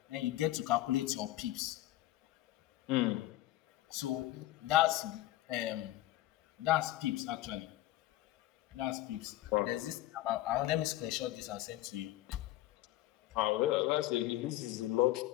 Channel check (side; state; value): right; quieter; 15.5 dB